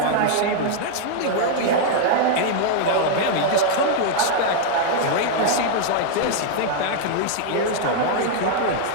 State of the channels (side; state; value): both; different; correlation 0.00